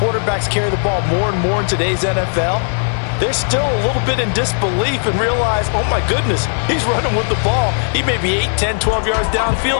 carry the ball more and more in today's NFL. They're still a little bit in disbelief and realize, oh my goodness, he's running with the ball. He may be 8, 10, 12 yards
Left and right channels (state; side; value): silent; right; digital silence